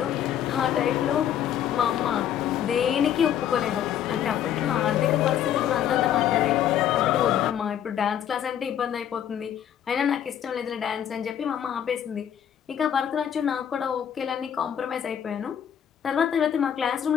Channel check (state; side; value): quieter; right; 9.8 dB